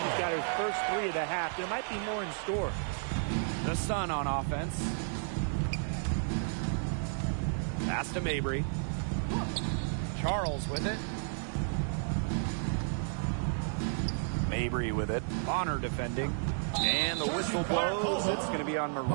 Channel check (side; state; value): left; silent; digital silence